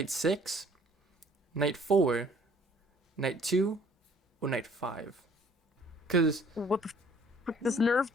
6, Knight 4, Knight 2, or Knight 5? Because... What the fuck just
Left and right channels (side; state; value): both; normal; correlation 0.57